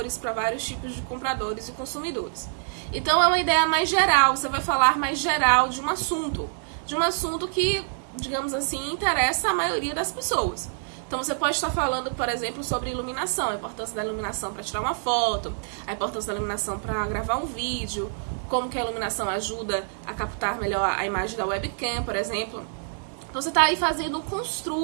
para vários tipos de compradores e consumidores. Então é uma ideia mais geral, você vai falar mais geral de um assunto que, digamos assim, interessa a maioria das pessoas. Então você pode estar falando, por exemplo, sobre iluminação, a importância da iluminação para tirar uma foto, a importância da iluminação para gravar um vídeo, como que a iluminação ajuda a captar melhor a imagem da webcam, por exemplo. Então você está aí fazendo um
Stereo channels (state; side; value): silent; left; digital silence